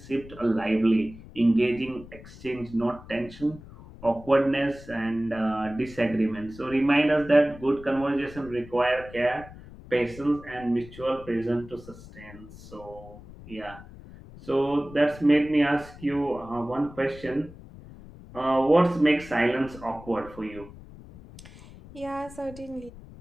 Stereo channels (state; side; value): noise; left; rumble, 18 dB below the sound